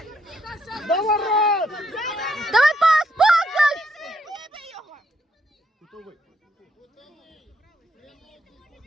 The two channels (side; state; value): both; normal; correlation 0.74